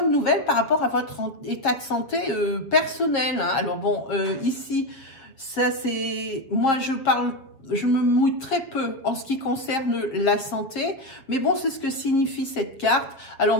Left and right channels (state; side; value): late; right; 7.4 ms